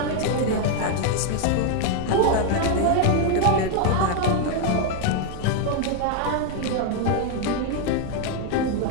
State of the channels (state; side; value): different; both; correlation 0.01